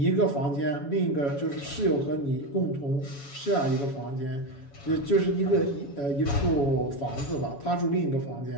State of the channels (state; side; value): late; right; 7.1 ms